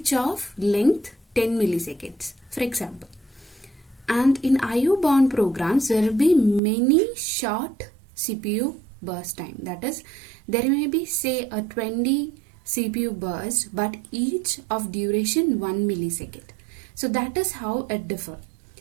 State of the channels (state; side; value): drops out; left; at 6.6 s